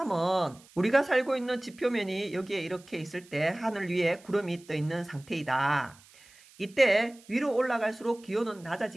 우리가 살고 있는 지표면이 여기에 이렇게 있을 때 하늘 위에 구름이 떠 있는 상태이다. 이때 위로 올라갈수록 기온은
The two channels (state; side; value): noise; right; hiss, 25 dB below the sound